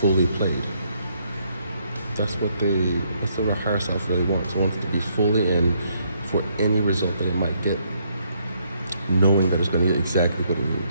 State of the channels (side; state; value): both; inverted; correlation -0.72